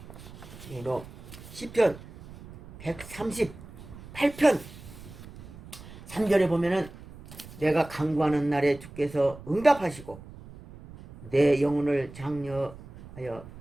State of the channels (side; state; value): right; noise; rumble, 17 dB below the sound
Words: 그리고 시편 138편 3절에 보면은 내가 간구하는 날에 주께서 응답하시고 내 영혼을 장려하여